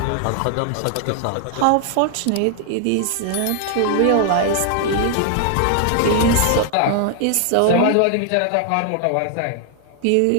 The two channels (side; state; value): both; different; correlation 0.00